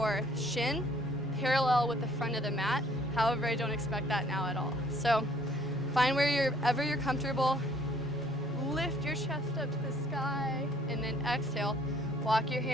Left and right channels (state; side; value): normal; both; correlation 0.59